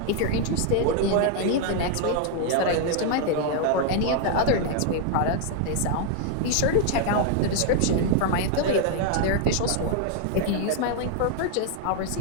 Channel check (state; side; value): different; both; correlation 0.00